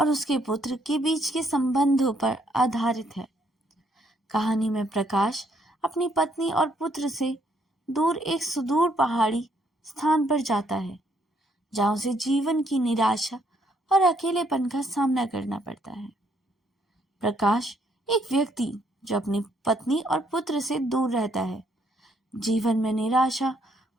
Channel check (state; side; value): normal; both; correlation 0.70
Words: उसके पुत्र के बीच के संबंधों पर आधारित है। कहानी में प्रकाश अपनी पत्नी और पुत्र से दूर एक सुदूर पहाड़ी स्थान पर जाता है, जहाँ उसे जीवन की निराशा और अकेलेपन का सामना करना पड़ता है। प्रकाश एक व्यक्ति जो अपनी पत्नी और पुत्र से दूर रहता है, जीवन में निराशा